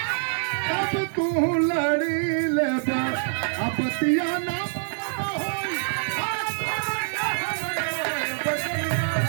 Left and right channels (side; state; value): left; silent; digital silence